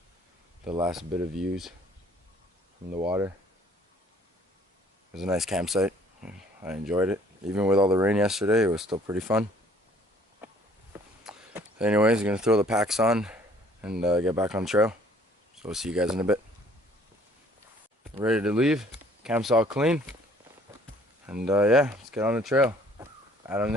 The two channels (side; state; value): both; normal; correlation 0.58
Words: the last bit of views from the water. It was a nice campsite. I enjoyed it. Even with all the rain yesterday, it was still pretty fun. Anyways, I'm gonna throw the packs on and get back on the trail. So we'll see you guys in a bit. Ready to leave. Camp's all clean. And yeah, let's get on the trail. Adam